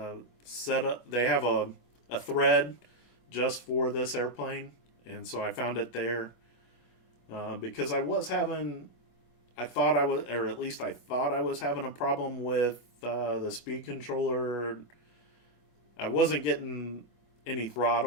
setup. They have a thread just for this airplane, and so I found it there because I thought I was having a problem with the speed controller. I wasn't getting any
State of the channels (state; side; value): late; right; 23 ms